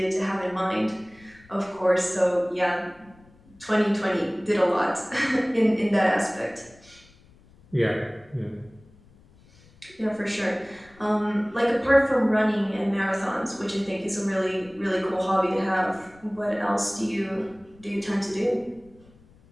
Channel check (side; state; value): left; noise; rumble, 27 dB below the sound